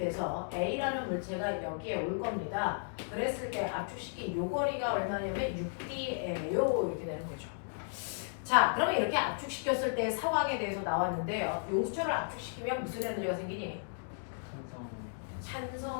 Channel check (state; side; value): silent; right; digital silence